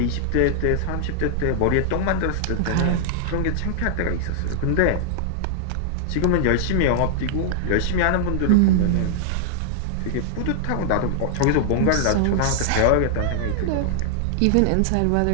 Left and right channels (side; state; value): both; different; correlation -0.01